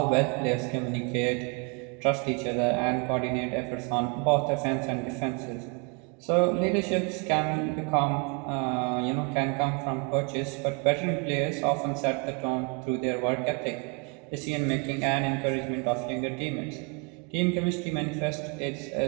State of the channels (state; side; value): quieter; left; 32.9 dB